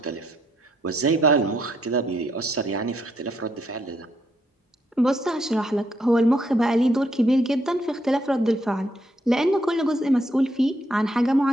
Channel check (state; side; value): normal; both; correlation 0.74